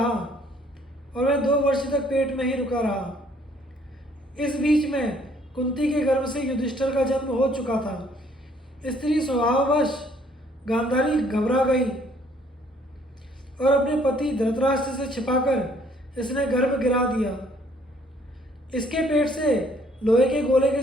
और वह 2 वर्ष तक पेट में ही रुका रहा। इस बीच में कुंती के गर्भ से युधिष्ठिर का जन्म हो चुका था। स्त्री स्वभाववश गांधारी घबरा गई और अपने पति धृतराष्ट्र से छिपाकर इसने गर्भ गिरा दिया। इसके पेट से लोहे के गोले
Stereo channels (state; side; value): normal; both; correlation 0.62